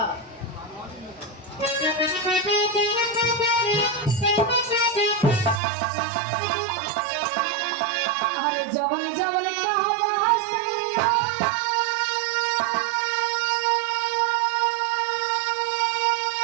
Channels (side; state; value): left; drops out; at 5.6 s